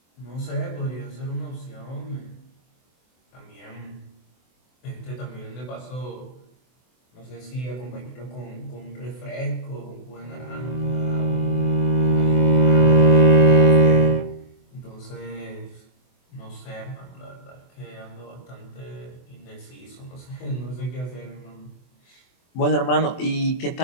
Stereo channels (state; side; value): late; right; 24 ms